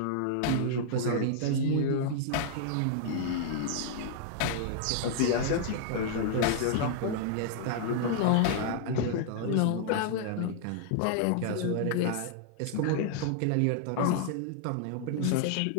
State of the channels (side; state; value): both; different; correlation -0.01